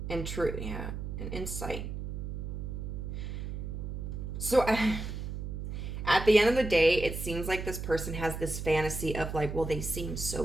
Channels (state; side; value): noise; right; hum, 5 dB below the sound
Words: truth, yeah, and insight. So at the end of the day, it seems like this person has this fantasy of like, well, they seem